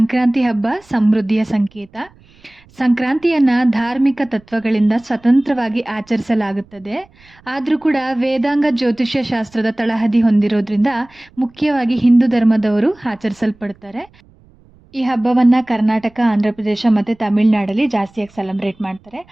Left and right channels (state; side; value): noise; right; rumble, 29 dB below the sound